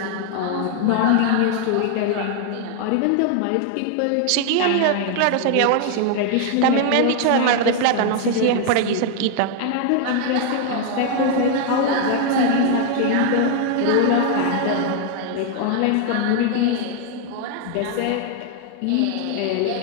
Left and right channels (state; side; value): different; both; correlation 0.00